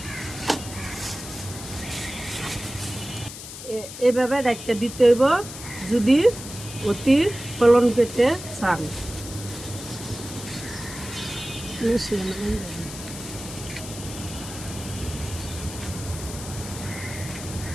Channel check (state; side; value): noise; left; hiss, 11 dB below the sound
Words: এভাবে ডাক্তার দিতে হইব যদি অতি ফলন পেতে চান।